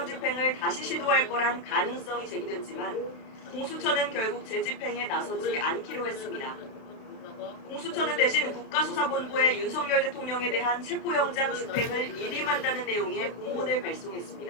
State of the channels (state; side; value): late; right; 32 ms